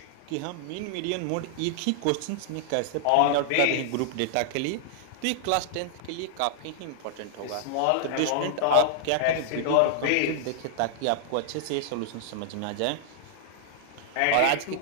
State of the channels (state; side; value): different; both; correlation -0.01